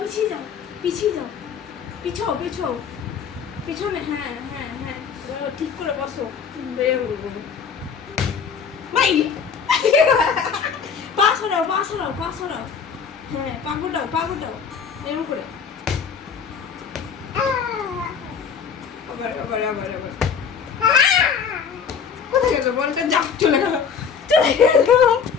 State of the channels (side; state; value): right; quieter; 6.6 dB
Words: পিছিয়ে যাও, পিছিয়ে যাও, পিছাও, পিছাও, পিছনে। হ্যাঁ হ্যাঁ হ্যাঁ, ঠিক করে বসো। ভাই পা সরাও, পা সরাও, পা সরাও। হ্যাঁ, পা গোটাও, পা গোটাও, এরকম করে। আবার আবার আবার আবার। কোথায় গেল বলটা? যা, চলে গেল, চলে গেল।